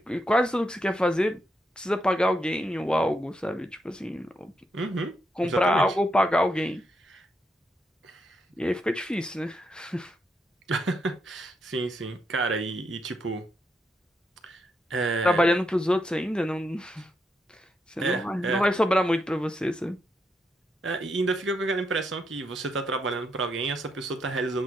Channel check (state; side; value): normal; both; correlation 0.80